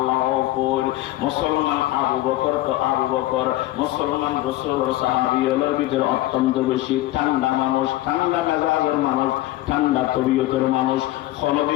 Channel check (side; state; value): right; quieter; 16.4 dB